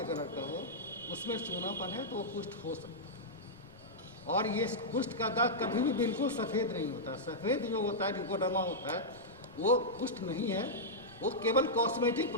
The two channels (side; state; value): left; noise; rumble, 27 dB below the sound